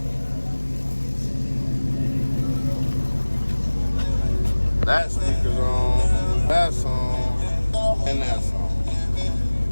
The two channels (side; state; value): both; inverted; correlation -1.00